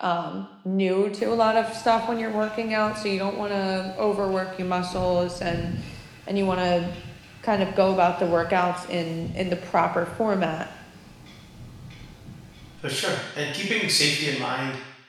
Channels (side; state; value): both; identical; correlation 1.00